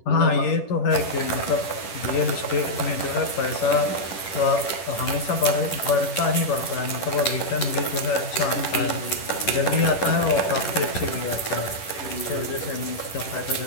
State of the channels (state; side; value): late; right; 11 ms